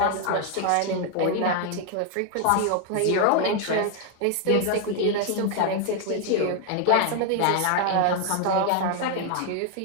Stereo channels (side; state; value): both; different; correlation 0.00